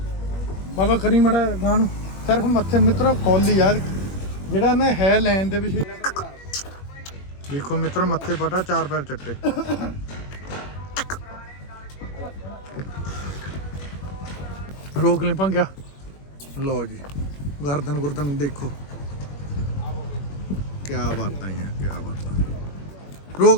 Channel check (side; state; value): right; late; 21 ms